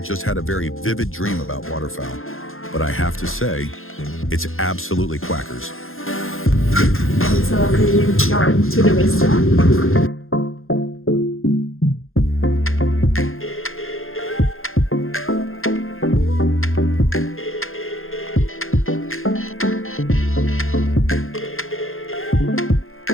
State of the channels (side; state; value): right; late; 0.60 ms